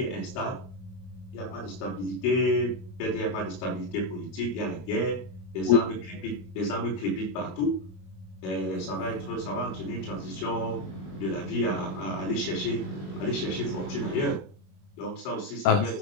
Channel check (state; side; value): late; right; 21 ms